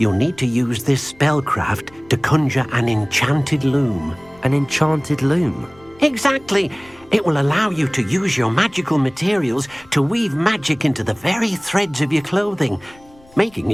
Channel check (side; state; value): left; noise; rumble, 27 dB below the sound